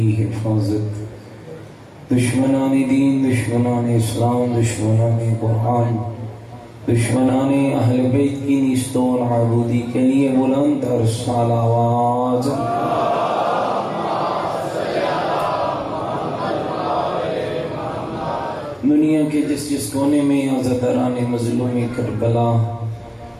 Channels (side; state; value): both; identical; correlation 1.00